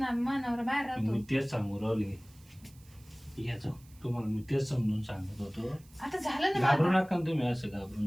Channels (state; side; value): noise; right; hiss, 27 dB below the sound